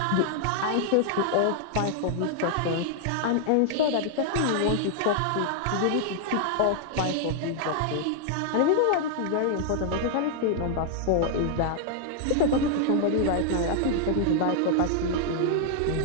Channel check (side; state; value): both; different; correlation -0.01